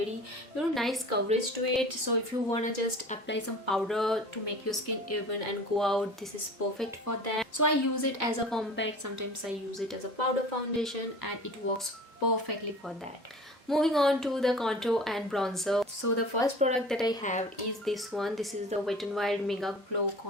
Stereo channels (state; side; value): normal; both; correlation 0.41